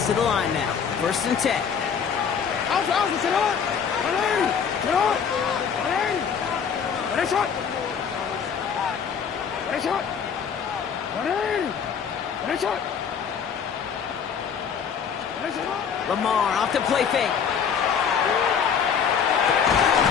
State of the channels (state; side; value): quieter; right; 7.0 dB